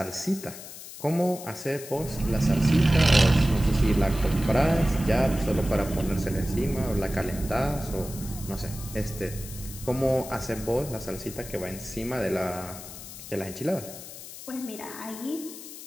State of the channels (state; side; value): noise; left; hiss, 13 dB below the sound